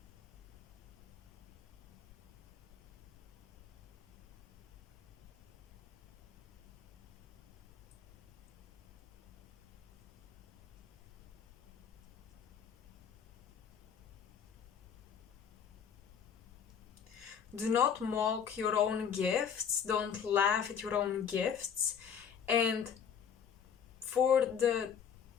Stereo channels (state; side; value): quieter; right; 7.6 dB